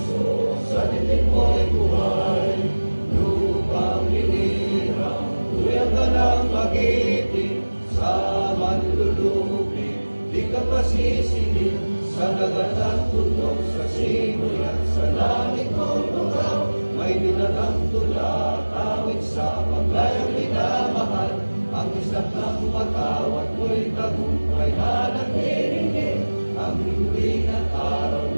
sa titik mo'y buhay. Lupang hinirang, tuyang ka ng magiting, sa manlulupi, di ka pasisingil, sa dagat at tunog, sa simoy at sa langit mong lugaw. May binatang tula, awit sa paglayang minamahal, ang isang ng matawat mo'y tagumpay na nagdiringin. Ang lingwing at araw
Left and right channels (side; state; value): both; inverted; correlation -1.00